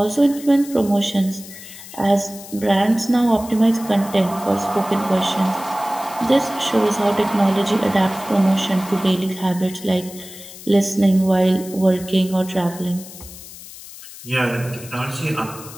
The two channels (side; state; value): left; noise; hiss, 16 dB below the sound